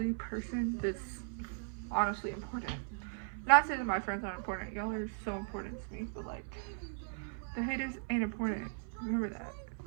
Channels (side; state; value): left; silent; 53 dB below the other